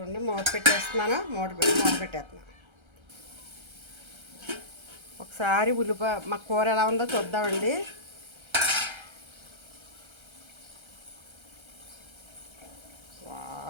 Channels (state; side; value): late; left; 1.3 ms